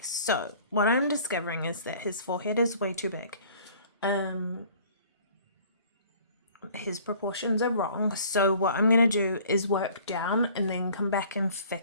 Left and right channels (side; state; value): both; inverted; correlation -0.52